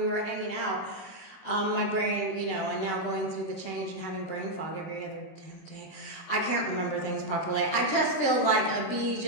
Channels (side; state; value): right; late; 25 ms